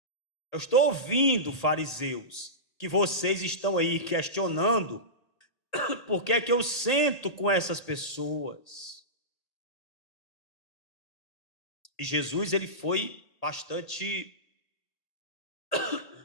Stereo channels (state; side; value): late; right; 1.8 ms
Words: Eu estou ouvindo, fariseus, que vocês estão aí questionando por que é que eu sento com essas pessoas. E Jesus, ele foi bastante...